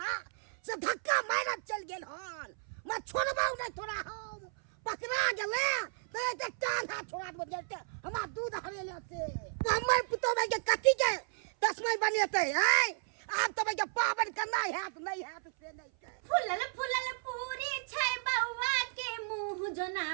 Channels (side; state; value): left; silent; 55 dB below the other